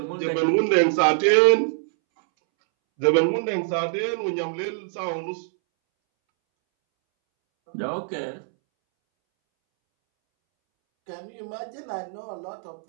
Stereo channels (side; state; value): left; silent; 63 dB below the other